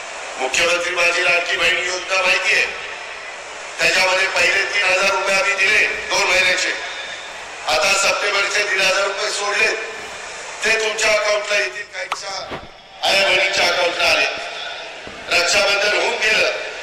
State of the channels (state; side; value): identical; both; correlation 1.00